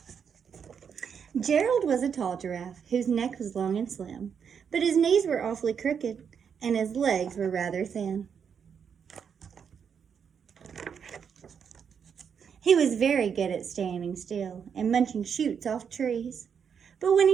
Gerald was a tall giraffe whose neck was long and slim, but his knees were awfully crooked, and his legs were rather thin. He was very good at standing still and munching shoots off trees, but when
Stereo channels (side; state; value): left; quieter; 7.1 dB